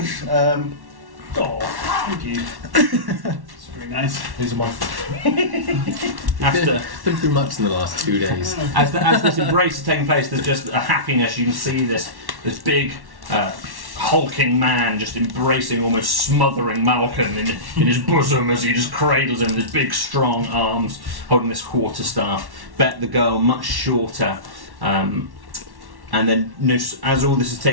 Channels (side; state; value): left; late; 1.1 ms